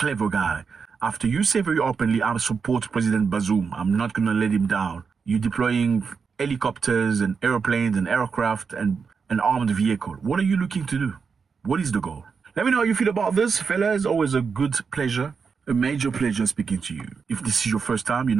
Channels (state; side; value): quieter; left; 5.6 dB